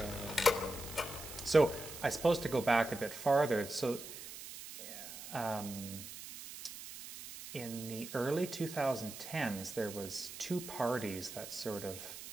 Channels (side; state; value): right; noise; hiss, 11 dB below the sound